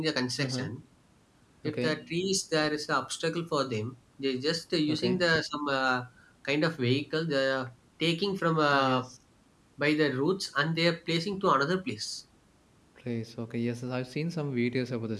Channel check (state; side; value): identical; both; correlation 1.00